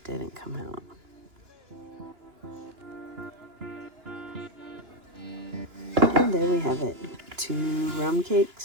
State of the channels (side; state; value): left; late; 2.9 ms